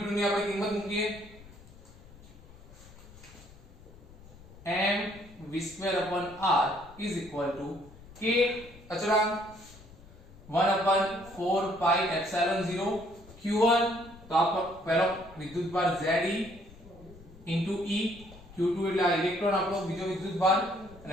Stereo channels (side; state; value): left; noise; rumble, 21 dB below the sound